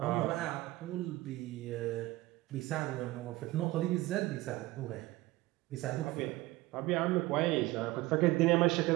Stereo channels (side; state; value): left; quieter; 18.8 dB